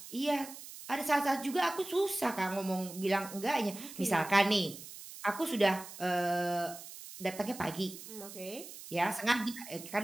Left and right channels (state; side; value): noise; right; hiss, 14 dB below the sound